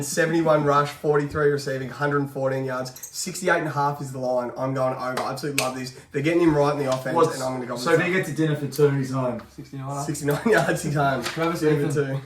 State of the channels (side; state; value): both; identical; correlation 1.00